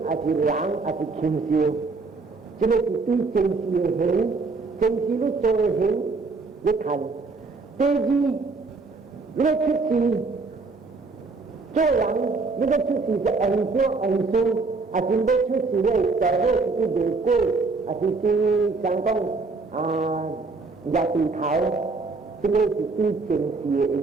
ada lang, ada kimsiu. Jadi itu kimsiu ni. Chính trị nó cho hiểu với thành tê gì nó chút gì cho lắng nó chút gì sẽ ảnh xuống chính đó chút gì này trở về cái đề cô chính sáng công nhà tình thảo chính đó chính trị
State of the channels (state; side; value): quieter; left; 4.0 dB